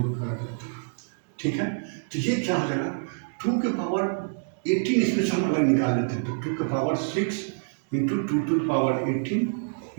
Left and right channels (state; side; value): silent; left; digital silence